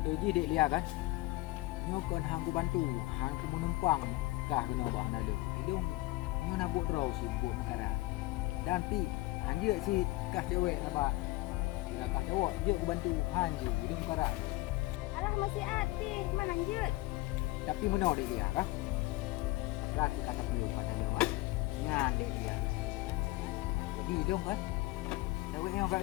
je dek lihat kan. Nyo kon hang ku bantu, hang ku menumpang kah kena bah na lu. Hidung nyo nak buat draw si buat mekara. Dan pi hang je si kah cewek apa. Bila kah cowok je ku bantu hang je hidung mekara. Alah masih hati, mana lanjut. Tapi meno dek dia kah? Rati kata beliau pada lu kan. Nyan dek dia. Jadi hidung kan. Cewek nyo ka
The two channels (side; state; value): right; quieter; 19.9 dB